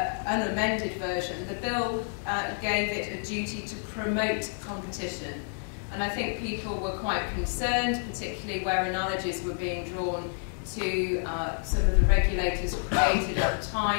unamended version. The bill gave it a duty to promote competition. And I think people were quite concerned, particularly where analogies were being drawn to some of the regulators created at the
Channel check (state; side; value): silent; right; 59 dB below the other